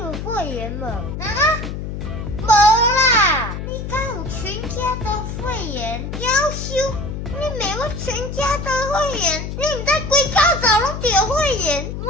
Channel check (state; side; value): noise; left; hum, 6 dB below the sound